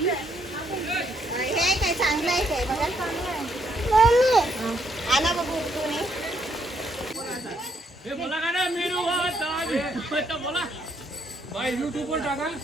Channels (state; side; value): normal; both; correlation 0.72